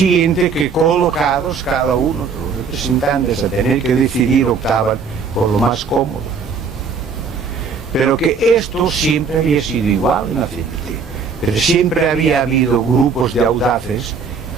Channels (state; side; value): quieter; left; 5.4 dB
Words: que colocados cada uno de los representantes a tener que decidir, optaban por lo más cómodo. Pero que esto siempre había sido igual en la CNT, pero siempre había habido grupos de audaces